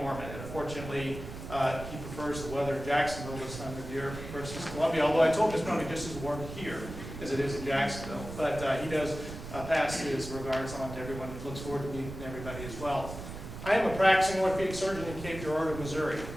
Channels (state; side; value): noise; right; rumble, 10 dB below the sound